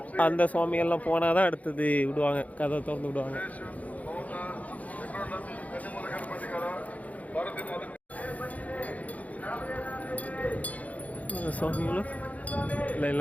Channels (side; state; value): right; late; 0.071 ms